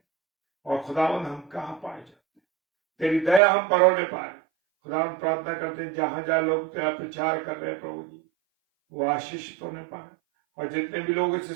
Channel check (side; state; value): left; drops out; at 3.4 s